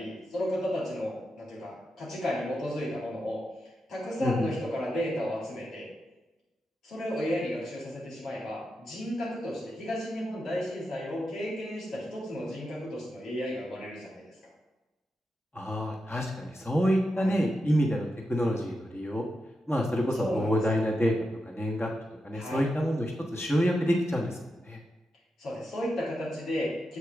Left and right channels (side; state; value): both; normal; correlation 0.88